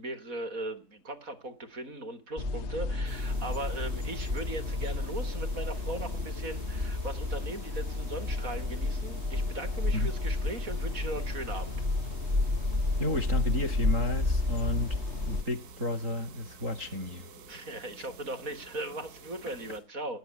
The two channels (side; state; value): left; late; 4.1 ms